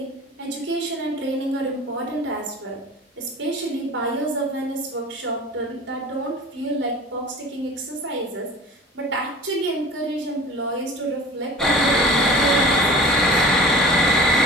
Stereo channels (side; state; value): both; normal; correlation 0.41